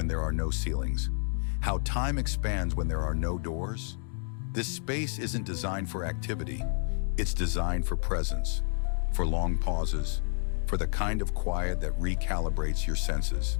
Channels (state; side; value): silent; right; 58 dB below the other